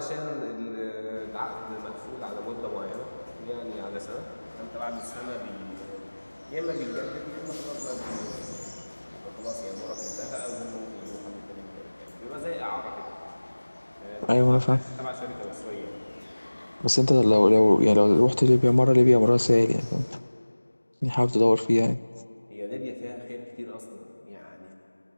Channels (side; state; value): both; inverted; correlation -1.00